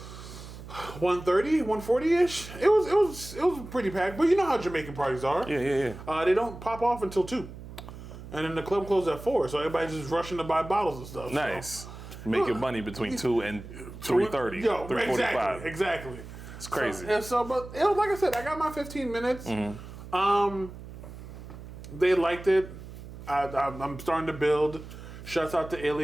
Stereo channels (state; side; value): noise; right; hum, 14 dB below the sound